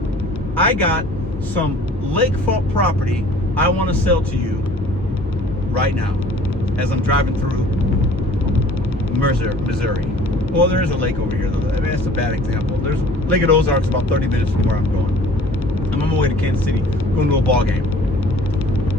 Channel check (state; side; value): normal; both; correlation 0.50